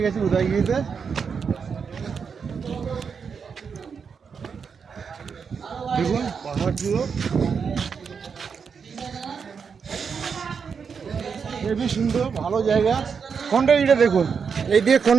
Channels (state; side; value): quieter; left; 6.1 dB